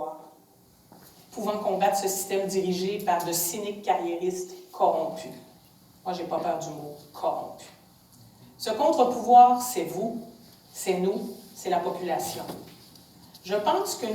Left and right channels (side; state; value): both; identical; correlation 1.00